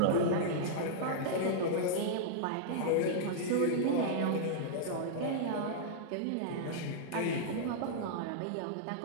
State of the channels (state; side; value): different; both; correlation -0.02